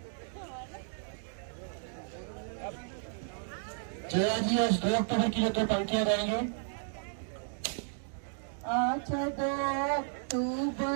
Jaya ji आज 2 अक्टूबर के लिए 2 पंक्तियां गाएंगे। आज 2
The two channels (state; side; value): silent; left; digital silence